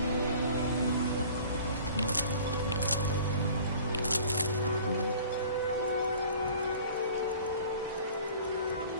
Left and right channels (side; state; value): both; inverted; correlation -0.46